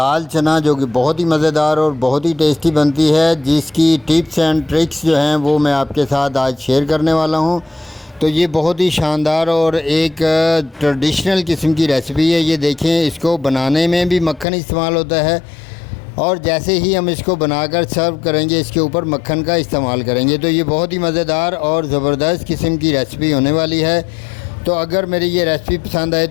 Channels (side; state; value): right; drops out; at 14.5 s